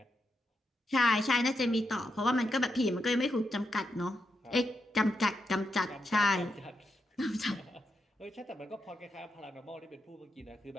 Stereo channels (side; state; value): both; normal; correlation 0.84